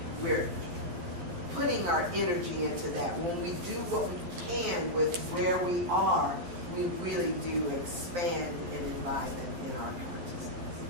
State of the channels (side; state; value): left; late; 11 ms